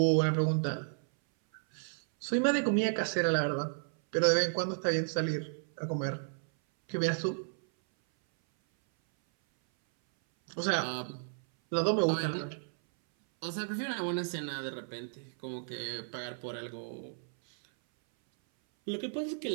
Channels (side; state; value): left; silent; 56 dB below the other